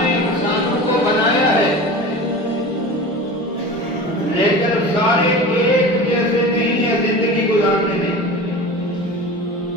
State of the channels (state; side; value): normal; both; correlation 0.34